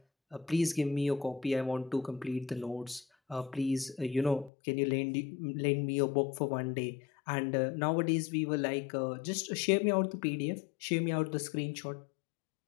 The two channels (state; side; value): drops out; right; at 4.5 s